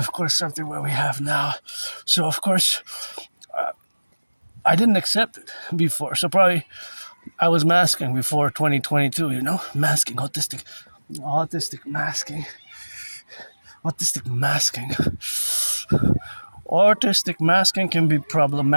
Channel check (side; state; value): both; inverted; correlation -1.00